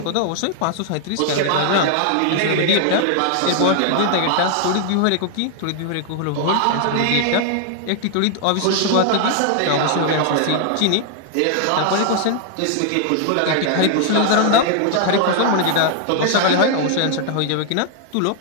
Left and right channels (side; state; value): both; different; correlation 0.00